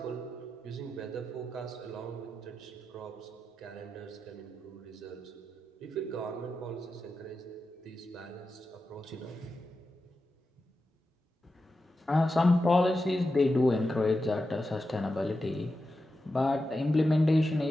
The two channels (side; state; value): both; normal; correlation 0.90